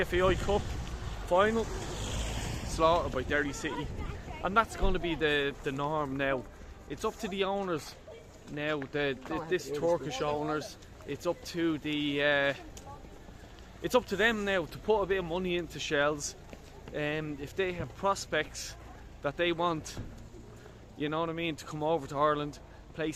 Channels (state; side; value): identical; both; correlation 1.00